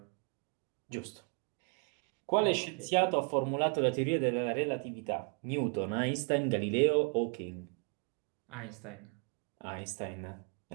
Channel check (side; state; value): left; quieter; 37.9 dB